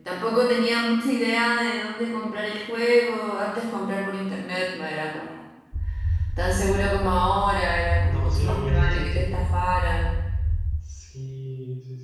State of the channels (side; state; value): both; identical; correlation 1.00